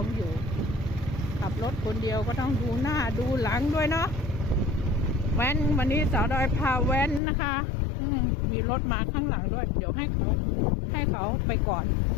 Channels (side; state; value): right; drops out; at 7.2 s